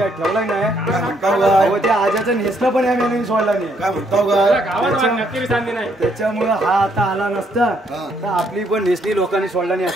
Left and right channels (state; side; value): normal; both; correlation 0.71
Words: ठेवलाय नाही. त्या आजाचं नेसलं पण या मेनूने सोडला नाही. त्याच्यामुळे हा आता आला नसता तर आपली पण नेसली लोकांनी सोडला नाही